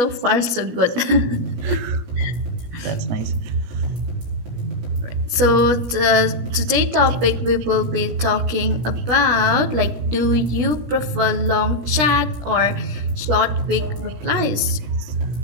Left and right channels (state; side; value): late; left; 17 ms